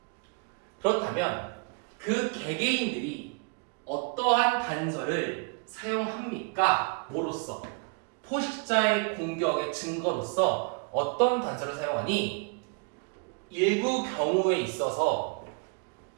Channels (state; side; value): quieter; left; 36.5 dB